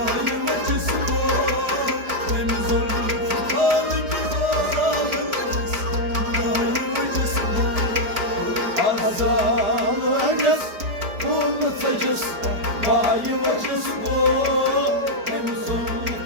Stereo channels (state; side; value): late; left; 4.8 ms